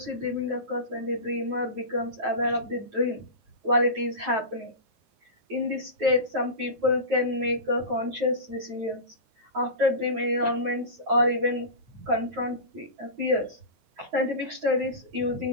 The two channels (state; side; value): late; left; 9.3 ms